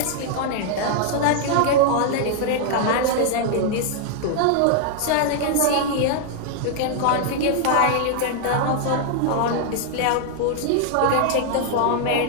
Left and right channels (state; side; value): different; both; correlation 0.00